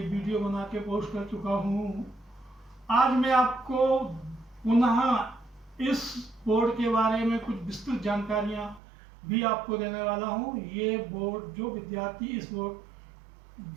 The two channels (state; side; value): drops out; left; at 8.8 s